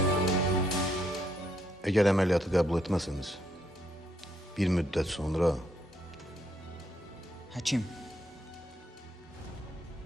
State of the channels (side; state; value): both; normal; correlation 0.75